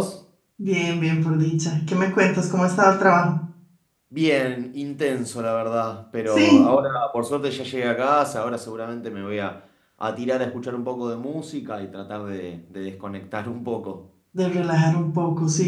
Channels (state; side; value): identical; both; correlation 1.00